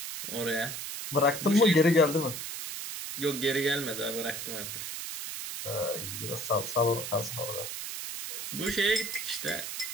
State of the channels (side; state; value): right; noise; hiss, 6 dB below the sound